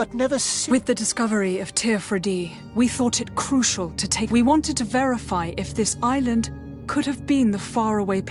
never seen. With the discovery of Teofredi, we thought it crucial to take... We wanted to verify if this island could have been the faraway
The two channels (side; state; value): both; identical; correlation 1.00